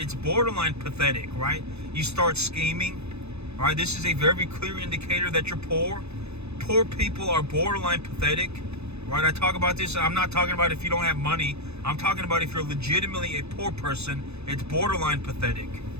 borderline pathetic, right? You start scheming, all right? This is a very clear indicator that you're poor. Poor people are borderline pathetic, right? I talk about this. I'm not talking about if you don't have money. I'm talking about if you're legitimately a poor person, it's borderline pathetic.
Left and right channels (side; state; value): left; late; 0.80 ms